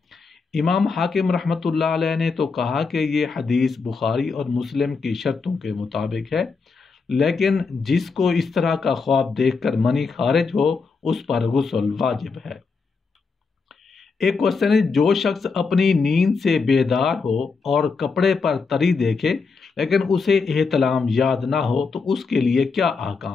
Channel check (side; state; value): right; quieter; 4.7 dB